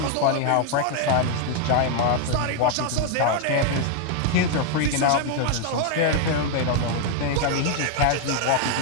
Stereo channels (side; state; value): both; different; correlation 0.01